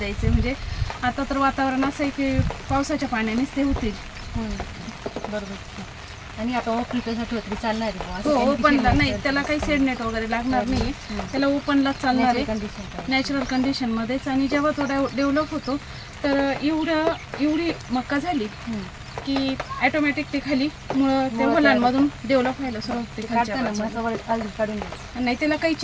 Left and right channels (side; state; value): both; identical; correlation 1.00